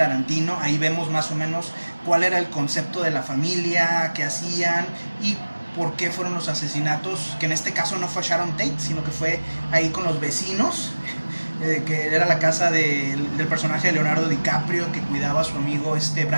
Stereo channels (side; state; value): both; inverted; correlation -1.00